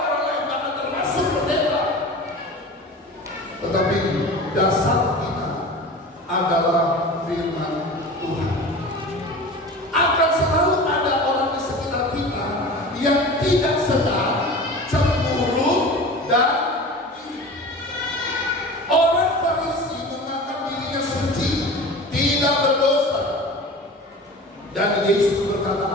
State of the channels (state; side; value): normal; both; correlation 0.36